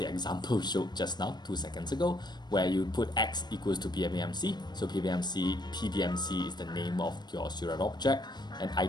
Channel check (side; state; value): right; late; 0.21 ms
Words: example showed just now 2 seconds ago, where you put x equals to PBMC. So PBMC is the name of your Seurat object, and